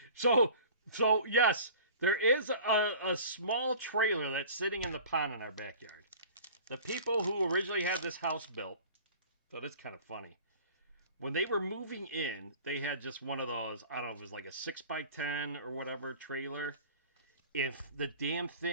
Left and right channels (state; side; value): inverted; both; correlation -0.43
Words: so yes, there is a small trailer that's sitting in the pond in our backyard. The people who originally had this house built, so that's kind of funny. When they were moving in, they had just one of those, I don't know if it was like a 6x10 or whatever trailer. If the damn